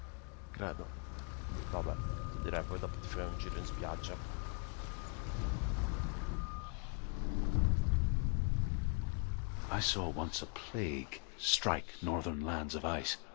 Credo. Vabbè. direi poi dopo ti fai un giro in spiaggia. I saw once a plague strike northern lands of ice.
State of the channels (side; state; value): right; quieter; 36.8 dB